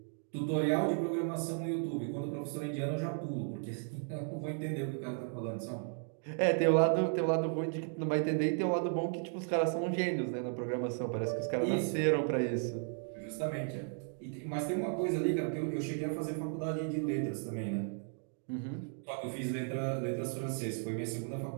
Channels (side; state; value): left; silent; 54 dB below the other